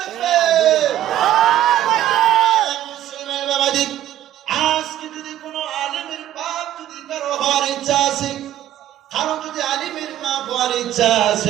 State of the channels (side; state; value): left; quieter; 12.6 dB